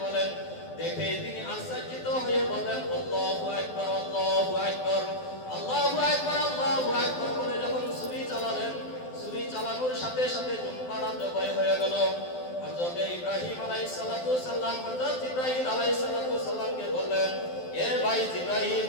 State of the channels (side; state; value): right; late; 12 ms